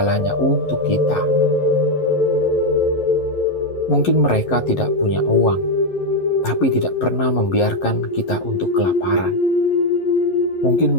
untuk kita. Mungkin mereka tidak punya uang, tapi tidak pernah membiarkan kita untuk kelaparan. Mungkin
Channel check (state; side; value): late; right; 11 ms